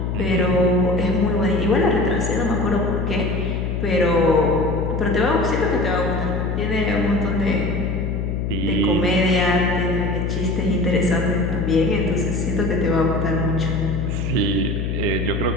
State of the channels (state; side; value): noise; left; hum, 1 dB below the sound